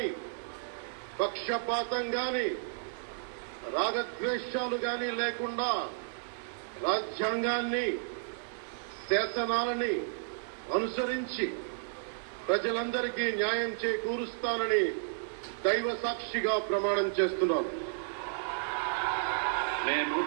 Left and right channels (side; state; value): left; silent; digital silence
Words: పక్షపాతం గాని, రాగద్వేషాలు గాని లేకుండా రాజ్యాంగాన్ని, శాసనాలని అనుసరించి ప్రజలందరికీ న్యాయం చేకూరుస్తానని దైవ సాక్షిగా ప్రమాణం చేస్తున్నాను. నేను